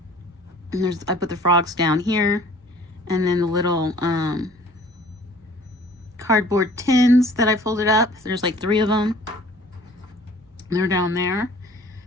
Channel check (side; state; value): both; normal; correlation 0.51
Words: And I put the frogs down here, and then the little cardboard tins that I folded up. There's like 3 of them. They're down there.